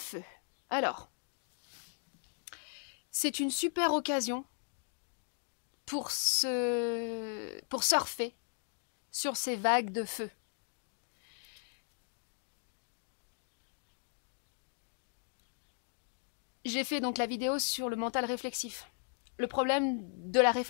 Alors, c'est une super occasion pour surfer sur ces vagues de feu. J'ai fait donc la vidéo sur le mental réflexif. Le problème de la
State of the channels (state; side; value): silent; right; 53 dB below the other